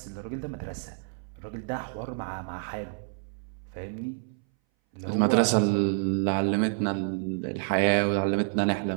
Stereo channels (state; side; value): silent; left; 59 dB below the other